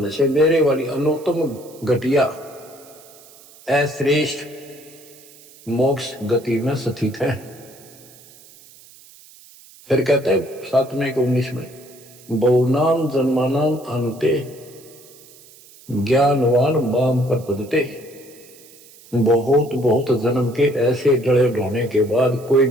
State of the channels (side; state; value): right; noise; hiss, 23 dB below the sound